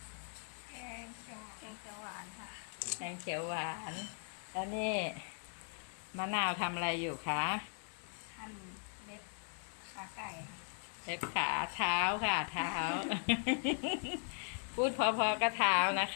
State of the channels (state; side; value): silent; right; 52 dB below the other